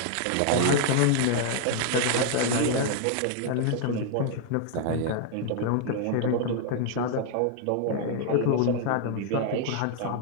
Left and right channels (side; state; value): both; different; correlation 0.00